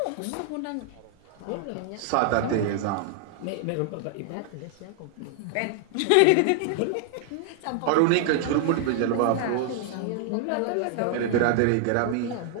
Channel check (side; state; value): both; different; correlation 0.00